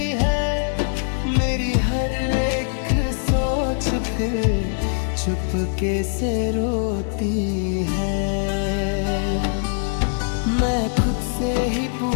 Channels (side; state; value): right; silent; digital silence